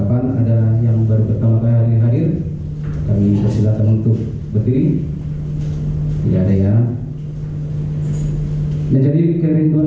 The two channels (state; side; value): identical; both; correlation 1.00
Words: Ada yang baru pertama kali hadir, kami persilakan untuk berdiri. Tidak ada ya. Menjadi